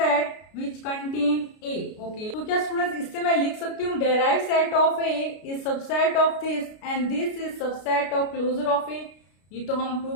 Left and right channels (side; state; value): right; late; 33 ms